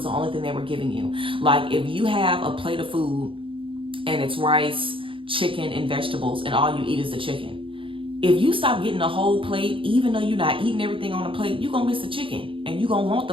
the only thing they were giving you. Like if you have a plate of food and it's rice, chicken, and vegetables, and all you eat is the chicken, if you stop getting the whole plate, even though you're not eating everything on the plate, you're going to miss the chicken, and you're going to want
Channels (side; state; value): left; late; 0.25 ms